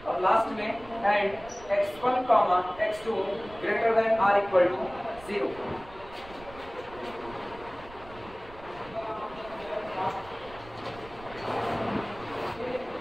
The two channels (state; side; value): noise; right; rumble, 19 dB below the sound